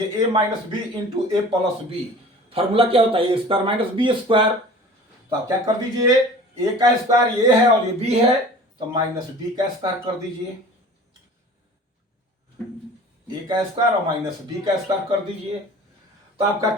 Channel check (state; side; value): normal; both; correlation 0.43